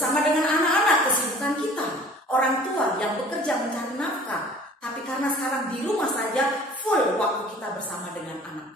dengan anak-anak, kesibukan kita, orang tua yang bekerja mencari nafkah. Tapi karena sekarang di rumah saja, full waktu kita bersama dengan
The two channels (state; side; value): normal; both; correlation 0.48